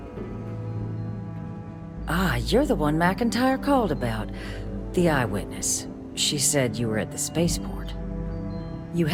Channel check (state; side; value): identical; both; correlation 1.00